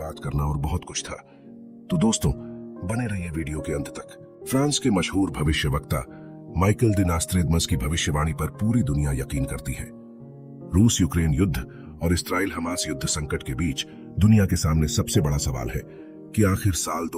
करना और बहुत कुछ था। तो दोस्तों, बने रहिए वीडियो के अंत तक। फ्रांस के मशहूर भविष्यवक्ता माइकल द नोस्ट्रैडमस की भविष्यवाणी पर पूरी दुनिया यकीन करती है। रूस यूक्रेन युद्ध और इस्राइल हमास युद्ध संकट के बीच दुनिया के सामने सबसे बड़ा सवाल है कि आखिर साल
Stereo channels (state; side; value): identical; both; correlation 1.00